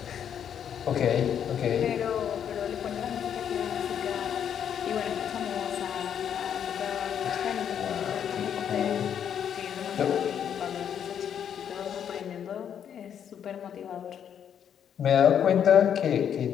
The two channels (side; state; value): right; quieter; 8.7 dB